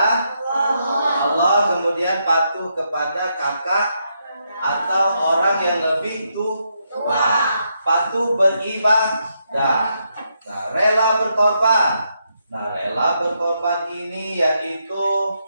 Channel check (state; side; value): inverted; both; correlation -0.80